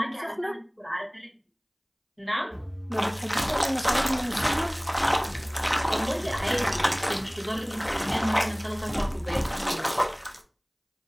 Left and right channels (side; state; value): both; identical; correlation 1.00